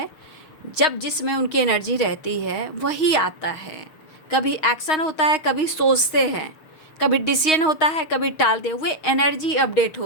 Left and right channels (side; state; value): right; late; 6.3 ms